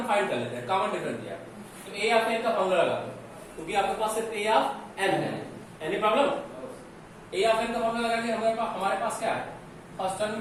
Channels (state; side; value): identical; both; correlation 1.00